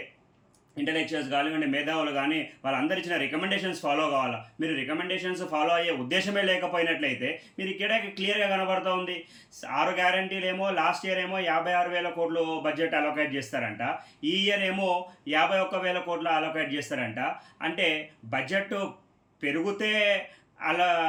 ఇంటలెక్చువల్స్ కానివ్వండి, మేధావులు కానీ వాళ్ళందరూ ఇచ్చిన రికమెండేషన్స్ ఫాలో కావాలా. మీరు రికమెండేషన్స్ ఫాలో అయ్యే ఉద్దేశమే లేకపోయినట్లయితే మీరు ఇక్కడ క్లియర్గా కనబడుతూ ఉంది. 6 గ్యారంటీలు ఏమో లాస్ట్ ఇయర్ ఏమో 56,000 కోట్లు బడ్జెట్ అలొకేట్ చేస్తారంట, ఈ ఇయర్ ఏమో 51,000 కోట్లు అలొకేట్ చేస్తారంట. అంటే బడ్జెట్ పెరిగితే అలా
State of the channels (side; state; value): both; identical; correlation 1.00